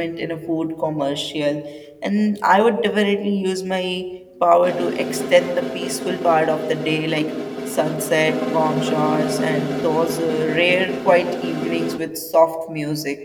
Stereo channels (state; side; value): identical; both; correlation 1.00